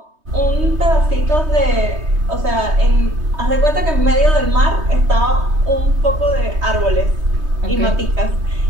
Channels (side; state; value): left; late; 3.2 ms